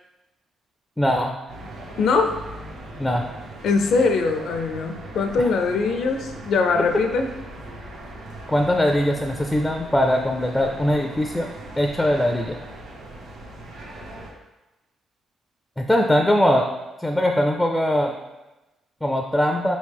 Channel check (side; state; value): both; normal; correlation 0.84